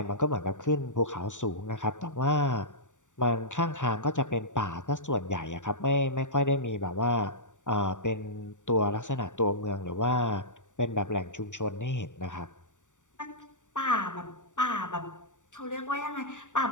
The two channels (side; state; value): right; late; 0.86 ms